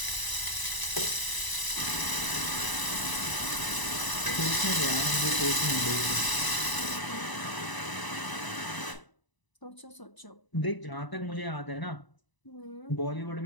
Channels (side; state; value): right; late; 1.0 ms